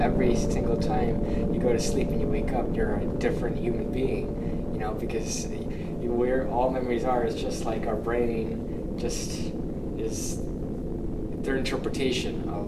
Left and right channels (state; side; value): identical; both; correlation 1.00